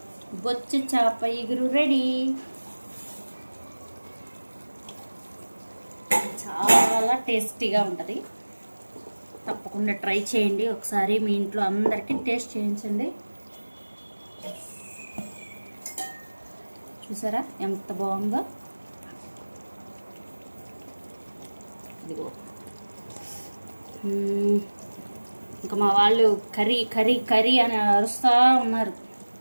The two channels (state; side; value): inverted; both; correlation -1.00